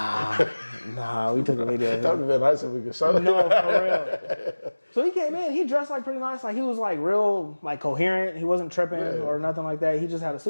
we took a video. That would have been nice if we could show it. No, for real. So he came in. He dressed pretty nice. He was real coherent. He wasn't tripping or nothing like that. He just had a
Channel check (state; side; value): inverted; both; correlation -1.00